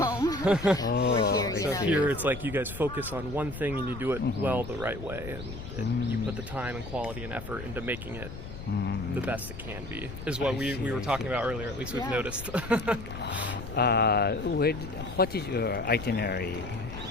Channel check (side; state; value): left; noise; rumble, 10 dB below the sound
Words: We're here, Here it's like you guys focus on one thing and you do it well the right way, and you put the time and quality and effort into making it the best it can be, is what we were talking about earlier, at least we've noticed. What is your itinerary?